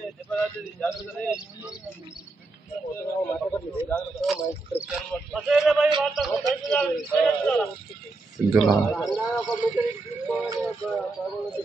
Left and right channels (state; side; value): quieter; left; 3.4 dB